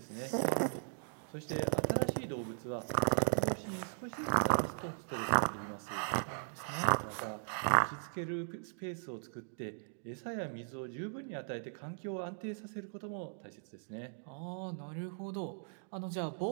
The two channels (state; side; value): silent; left; digital silence